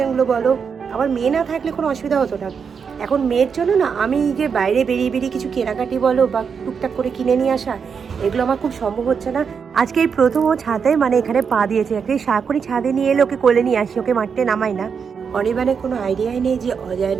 বলো। আমার মেয়ে না থাকলে কোনো অসুবিধা হতো না। এখন মেয়ের জন্য না আমি যে বাইরে বেরিয়ে কিছু কেনাকাটি বলো বা টুকটাক করে কিনে নিয়ে আসা, এগুলো আমার খুব সম্ভব হচ্ছে না। আজকে এই প্রথম ও ছাদে মানে এখানে পা দিয়েছে। একটা সাকরি ছাদে নিয়ে এলে ওকে কোলে নিয়ে আসি, ওকে মারতে নামাই না। অনিবানের কোনো আইডিয়াই নেই যে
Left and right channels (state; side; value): quieter; left; 6.3 dB